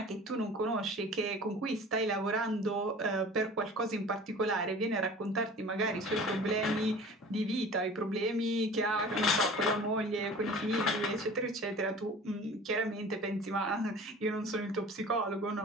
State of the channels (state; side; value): normal; both; correlation 0.42